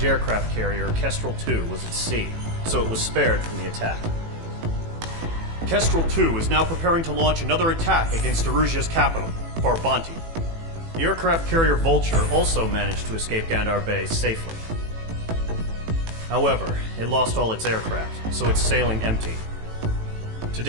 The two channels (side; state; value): left; late; 18 ms